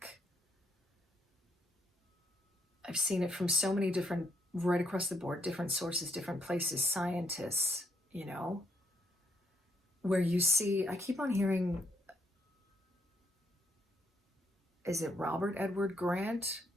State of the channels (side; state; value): both; normal; correlation 0.73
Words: I've seen it from so many different, right across the board, different sources, different places, scientists, you know, where you see, I keep on hearing, is it Robert Edward Grant?